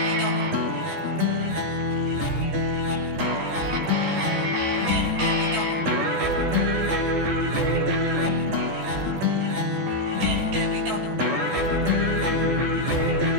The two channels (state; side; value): late; left; 14 ms